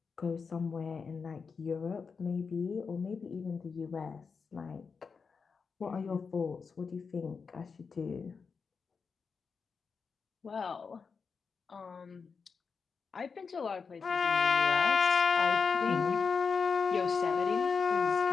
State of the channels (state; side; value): quieter; right; 5.4 dB